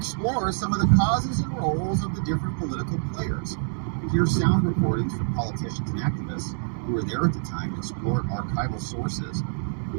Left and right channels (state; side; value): silent; left; digital silence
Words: some of the causes and roles of the different political players. Here's sound recordings from politicians and activists who were there at the time and explored archival sources.